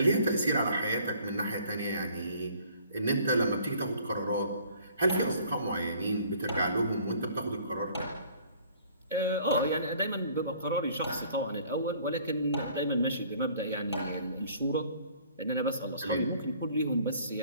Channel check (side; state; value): both; inverted; correlation -0.56